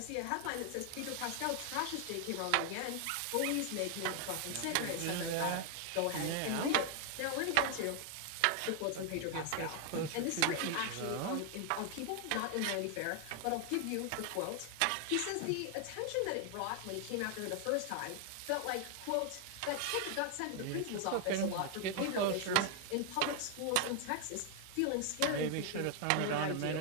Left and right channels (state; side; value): different; both; correlation 0.00